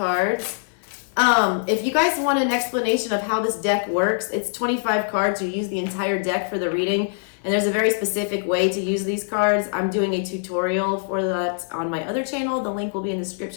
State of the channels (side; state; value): right; silent; digital silence